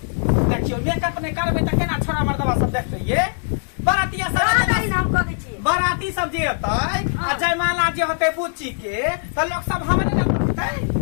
देखियो मेकअप ने करबे त केना छोरा मर्दवा सब देखते ये बरातिया सब हम कह दै छी बराती सब जे होतै आ जयमाला जे होतै बुच्ची के त लोग सब हमरे न करतै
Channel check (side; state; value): right; silent; digital silence